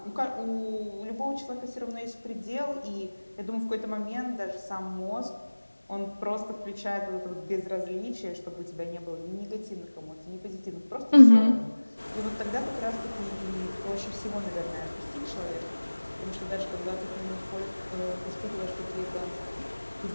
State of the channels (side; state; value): both; inverted; correlation -1.00